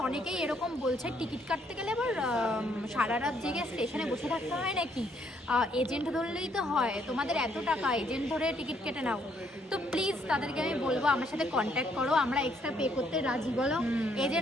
অনেকেই এরকম বলছে টিকিট কাটতে গেলে আবার সারা রাত জেগে স্টেশনে বসে থাকতে হয় নাকি, এজেন্ট ধরলেই তো হয়, তোমাদের এত টাকা, এজেন্ট ধরে টিকিট কেটে নাও। তো প্লিজ তাদেরকে আমি বলবো আমার সাথে কন্ট্যাক্ট করো, আমরা এক্সট্রা পে করতে রাজি, বলো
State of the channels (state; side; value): normal; both; correlation 0.69